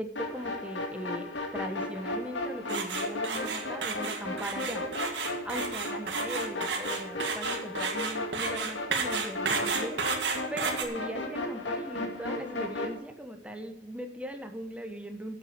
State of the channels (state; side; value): normal; both; correlation 0.08